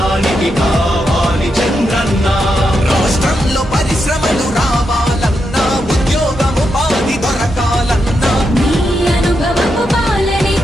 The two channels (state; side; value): normal; both; correlation 0.84